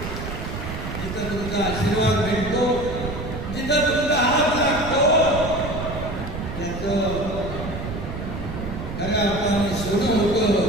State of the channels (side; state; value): right; noise; rumble, 7 dB below the sound